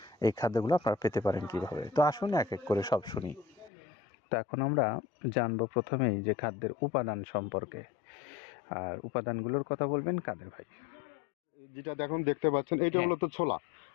এই খাদ্যগুলো আপনারা পেতে পারেন কীভাবে। তো আসুন এক এক করে সব শুনি। তো এখন আমরা জানবো প্রথমেই যে খাদ্যের উপাদান সম্পর্কে। আর উপাদানগুলোর কথা বলবেন কাদের ভাই। যেটা দেখতে পাচ্ছেন এইটা হলো তো ছোলা।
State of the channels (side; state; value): right; drops out; at 3.7 s